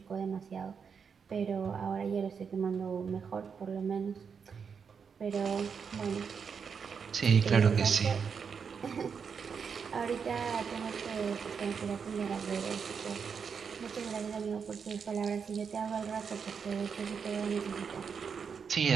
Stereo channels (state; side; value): quieter; left; 6.3 dB